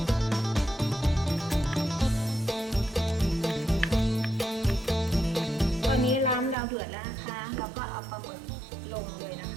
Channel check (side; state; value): left; drops out; at 6.6 s